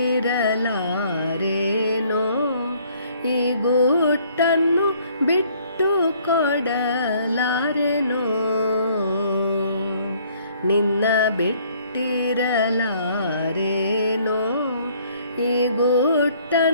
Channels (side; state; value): both; inverted; correlation -0.61